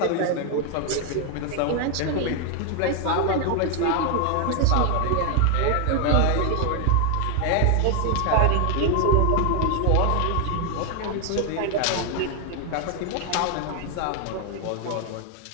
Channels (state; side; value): different; both; correlation 0.00